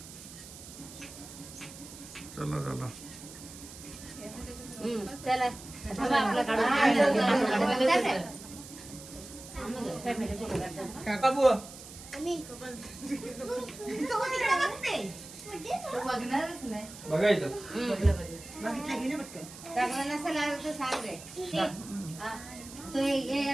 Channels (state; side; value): noise; right; hiss, 15 dB below the sound